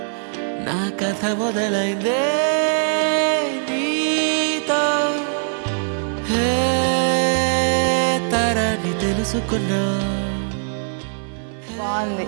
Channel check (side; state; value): left; silent; 56 dB below the other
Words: నా కథ మొదలైందే నీతో, తరాన్ని తెలుసుకున్నా. బాగుంది.